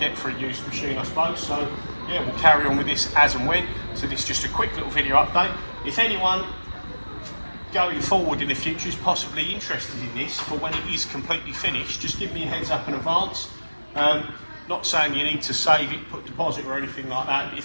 for a used machine, I suppose. So yeah, we'll carry on with this as and when. So this is just a quick little video update. If anyone going forward in the future is possibly interested in this for when it is completely finished, just give me a heads up in advance. Not saying you need to save it, put deposit or anything like that, but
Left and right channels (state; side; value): inverted; both; correlation -1.00